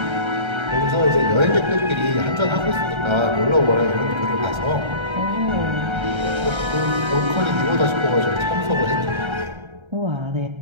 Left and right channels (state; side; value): late; left; 1.3 ms